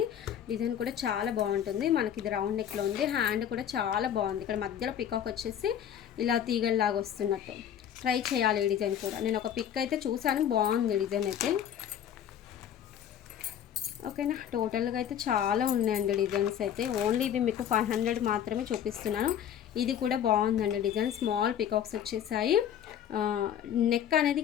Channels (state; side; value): quieter; right; 9.6 dB